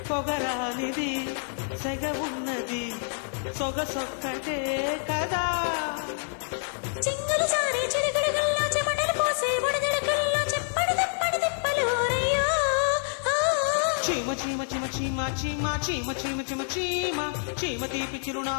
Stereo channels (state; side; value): silent; right; 60 dB below the other